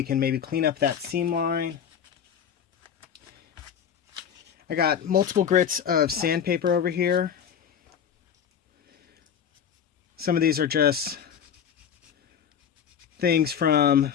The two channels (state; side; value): quieter; right; 8.2 dB